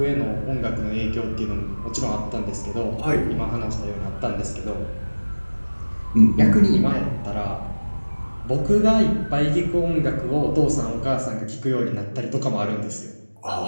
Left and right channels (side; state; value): both; inverted; correlation -1.00